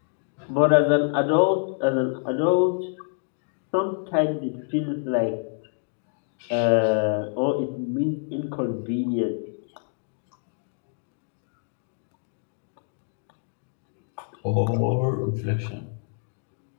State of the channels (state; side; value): silent; right; digital silence